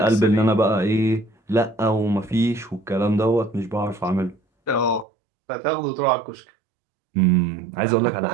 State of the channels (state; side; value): drops out; left; at 5.1 s